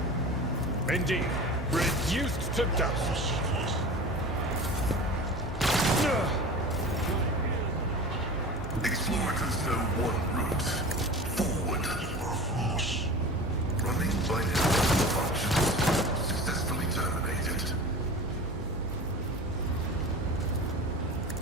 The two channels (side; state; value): both; normal; correlation 0.34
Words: Indeed, reduced to dust. Explorers know one route. Forward. Running by network functions successfully terminated.